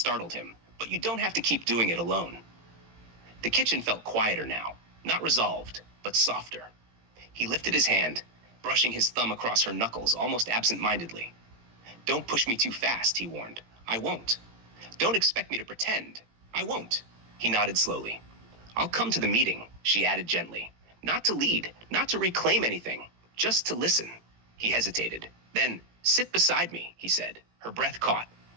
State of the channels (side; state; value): left; late; 18 ms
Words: him, but you don't have to keep doing it alone. The kitchen felt quieter now, not resolved, but softer. He lifted his hand, brushing his thumb across her knuckles almost absent-mindedly. Don't push me too fast, he warned. I won't. Don't expect me to pretend. I won't. He nodded slowly. I'll come to the meeting, she added gently. Not to lead, not to reclaim anything, just to listen. He hesitated. Then, sit beside me, he said. Her breath caught.